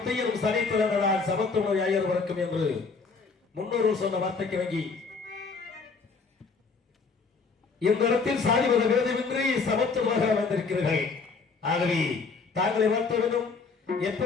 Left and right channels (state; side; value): quieter; right; 4.7 dB